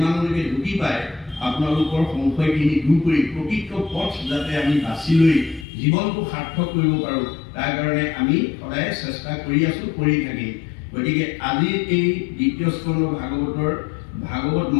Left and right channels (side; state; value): right; drops out; at 5.7 s